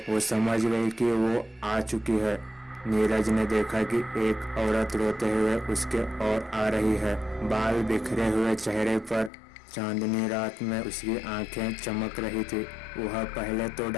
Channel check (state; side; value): drops out; right; at 9.3 s